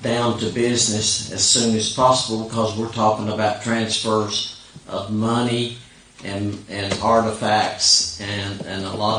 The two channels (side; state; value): both; identical; correlation 1.00